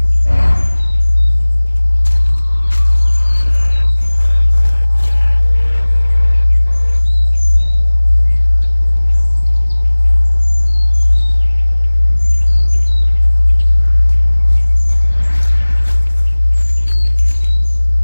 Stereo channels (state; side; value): inverted; both; correlation -1.00